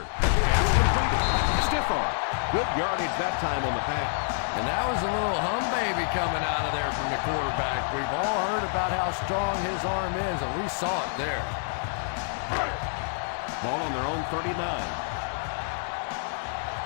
Pass completed. Stiff arm. Good yardage that time on the pass. And that was a little hum baby coming out of there from the quarterback. We've all heard about how strong his arm is, and we saw it there. Ball on their own 39.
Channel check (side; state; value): right; silent; 60 dB below the other